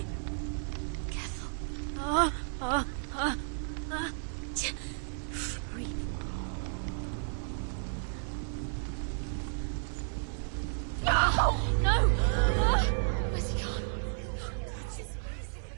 It's your fault. He's disappeared.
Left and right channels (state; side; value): silent; left; 56 dB below the other